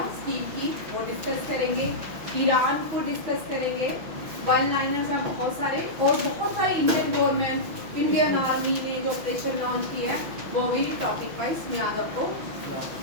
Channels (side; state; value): left; late; 6.0 ms